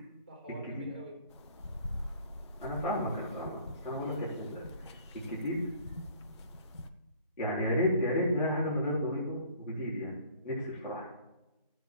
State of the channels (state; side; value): inverted; both; correlation -0.53